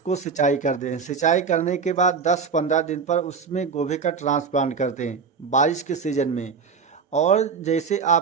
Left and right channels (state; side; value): quieter; left; 5.6 dB